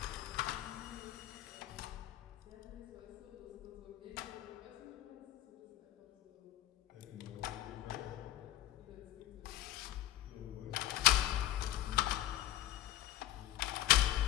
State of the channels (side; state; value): right; quieter; 14.6 dB